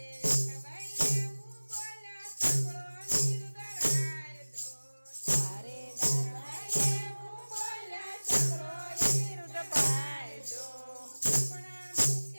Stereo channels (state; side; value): inverted; both; correlation -1.00